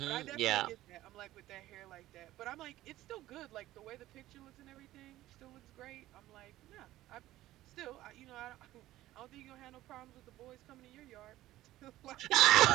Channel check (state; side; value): quieter; left; 15.4 dB